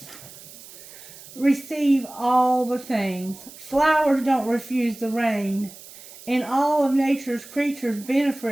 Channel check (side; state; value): right; noise; hiss, 18 dB below the sound